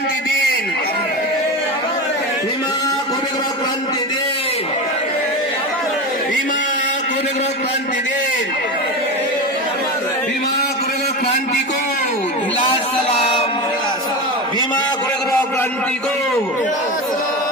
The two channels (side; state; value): both; normal; correlation 0.23